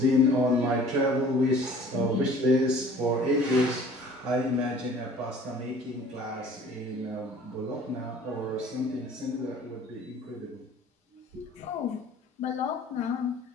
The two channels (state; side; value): normal; both; correlation 0.49